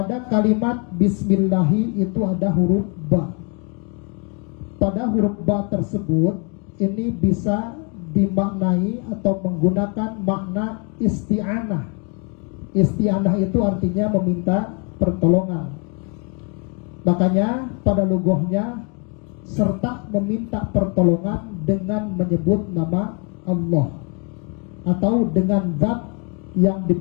kalimat Bismillahi itu ada huruf ba. Pada huruf ba tersebut ini bisa dimaknai atau menggunakan makna isti'anah. Isti'anah itu artinya meminta pertolongan. Makanya pada lughahnya serta meminta pertolongan dengan menyebut nama Allah atau dengan zat yang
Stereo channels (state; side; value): quieter; right; 34.6 dB